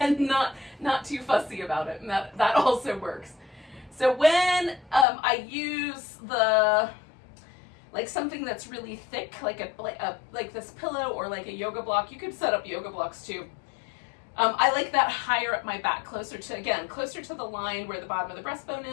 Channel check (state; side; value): drops out; right; at 5.1 s